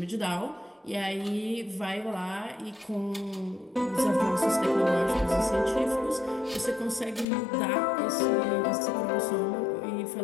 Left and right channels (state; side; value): drops out; right; at 7.2 s